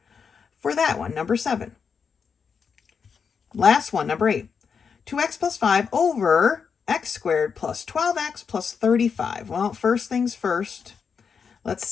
for that one, number 7. Last one, number 8. 2x plus 5 over x squared plus 12x plus 35. Well, first things first, let's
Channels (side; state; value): right; quieter; 6.2 dB